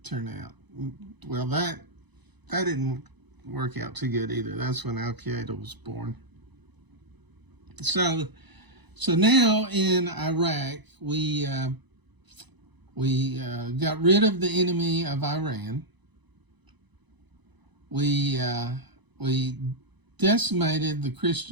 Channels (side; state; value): left; late; 1.0 ms